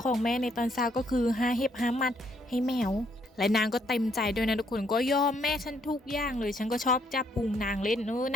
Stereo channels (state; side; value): normal; both; correlation 0.70